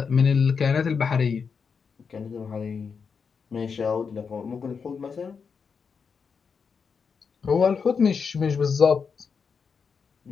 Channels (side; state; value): right; quieter; 5.8 dB